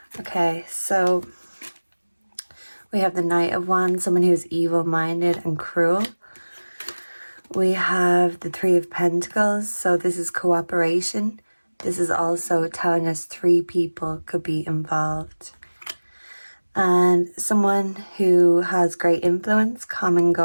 Okay, so we have the Knight of Wands, someone who's evil-minded and cruel. We have the Three of Pentacles, so this is cooperation. This is also telling us three people could be involved. And someone who has great influence, common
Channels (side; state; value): both; inverted; correlation -1.00